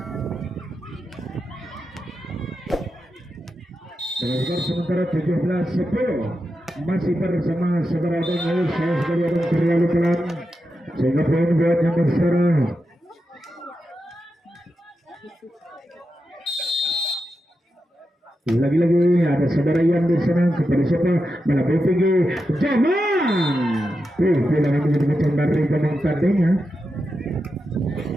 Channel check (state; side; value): normal; both; correlation 0.88